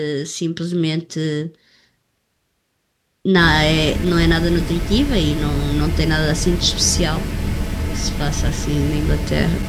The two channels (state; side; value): identical; both; correlation 1.00